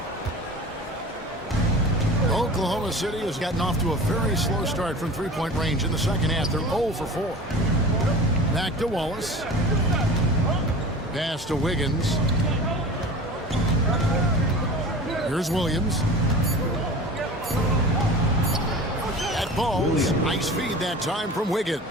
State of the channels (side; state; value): both; normal; correlation 0.37